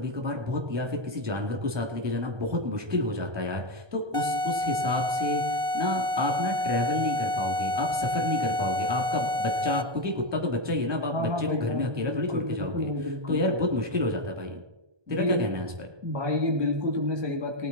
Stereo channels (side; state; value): left; late; 1.2 ms